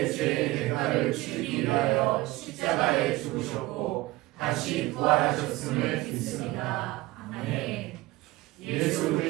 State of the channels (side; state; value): left; quieter; 19.1 dB